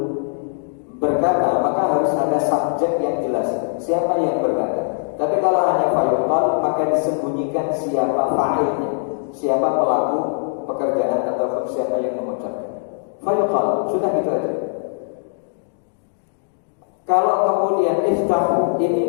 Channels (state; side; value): silent; right; digital silence